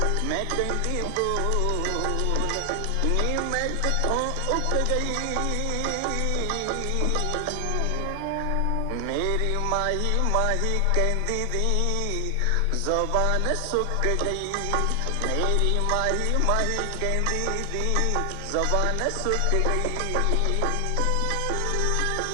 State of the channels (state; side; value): different; both; correlation 0.00